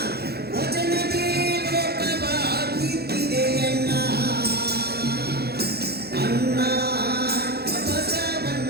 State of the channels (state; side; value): late; left; 0.46 ms